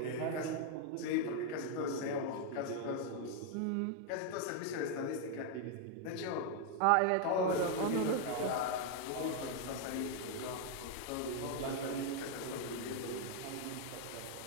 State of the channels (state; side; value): different; both; correlation 0.00